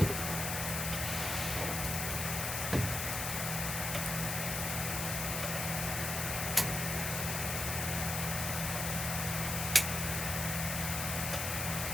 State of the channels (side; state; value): left; noise; hiss, 1 dB below the sound